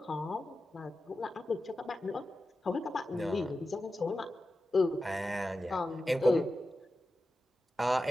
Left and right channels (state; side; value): normal; both; correlation 0.92